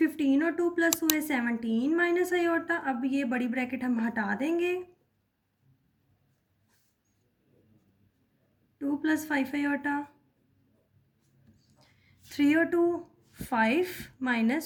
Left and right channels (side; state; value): both; identical; correlation 1.00